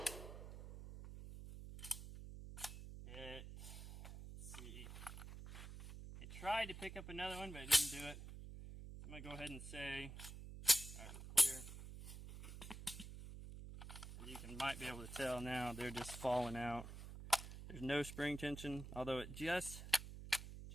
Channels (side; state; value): right; noise; hum, 10 dB below the sound